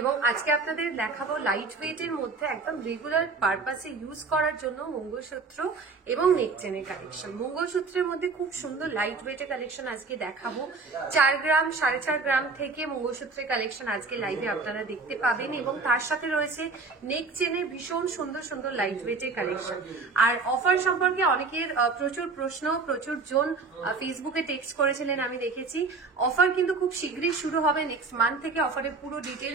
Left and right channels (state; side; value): quieter; left; 4.2 dB